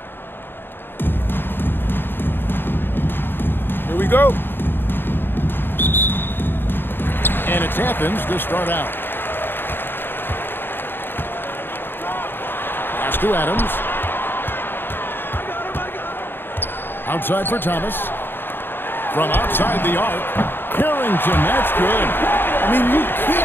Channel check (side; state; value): right; late; 0.099 ms